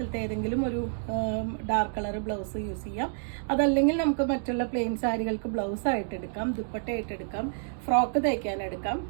ഏതെങ്കിലും ഒരു ഡാർക്ക് കളർ ബ്ലൗസ് യൂസ് ചെയ്യാം. അതല്ലെങ്കിൽ നമുക്ക് മറ്റുള്ള പ്ലെയിൻ സാരികൾക്ക് ബ്ലൗസ് ആയിട്ട് എടുക്കാം, ദുപ്പട്ടയായിട്ട് എടുക്കാം, ഫ്രോക്ക് തയ്ക്കാൻ എടുക്കാം.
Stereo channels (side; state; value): left; silent; digital silence